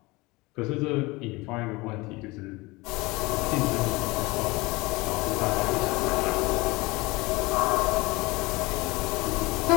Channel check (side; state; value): right; quieter; 23.0 dB